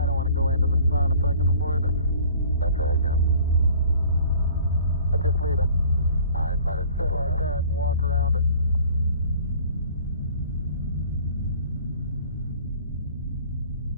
don't want to go into the sun if I can avoid it. That's right, Jim. I'll just leave it. All right, let it Sit like that and walk around it.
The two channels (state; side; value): inverted; both; correlation -0.50